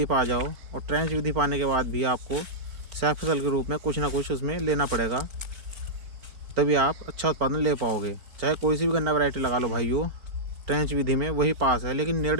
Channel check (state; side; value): late; left; 4.4 ms